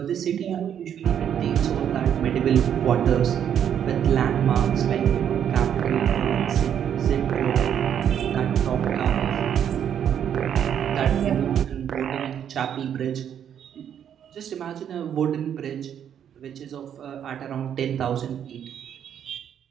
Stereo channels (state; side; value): quieter; left; 9.1 dB